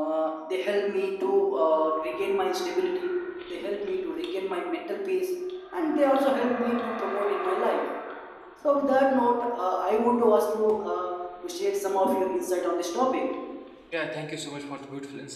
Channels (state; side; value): identical; both; correlation 1.00